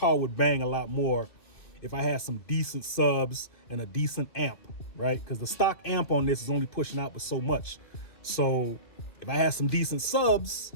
would bang a lot more if I had some decent subs and a decent amp, right? Because the stock amp on this is only pushing out with so much. So if I had some decent subs,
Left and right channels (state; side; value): late; right; 2.9 ms